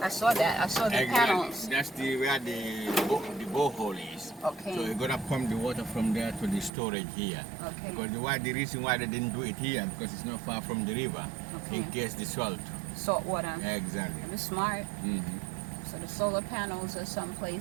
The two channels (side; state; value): left; drops out; at 6.7 s